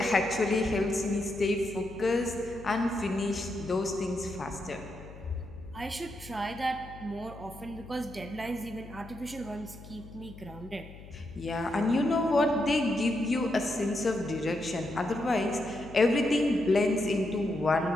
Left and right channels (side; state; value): left; noise; hum, 16 dB below the sound